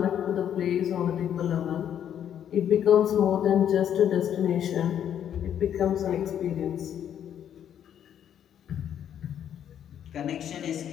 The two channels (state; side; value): quieter; right; 9.6 dB